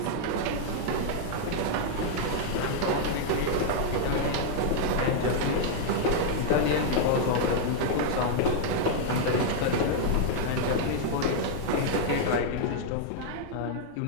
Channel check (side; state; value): both; different; correlation -0.01